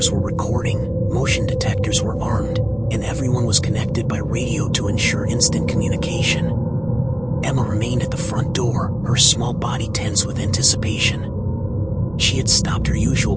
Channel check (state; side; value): noise; right; rumble, 20 dB below the sound